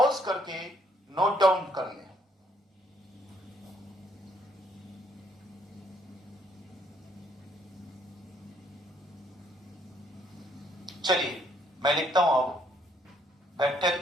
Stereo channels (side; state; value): both; normal; correlation 0.68